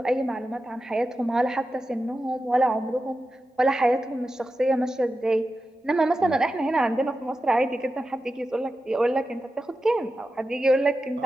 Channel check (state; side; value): normal; both; correlation 0.92